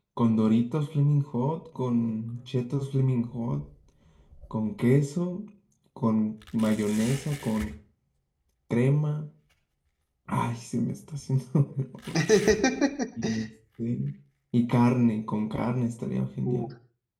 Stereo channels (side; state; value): both; identical; correlation 1.00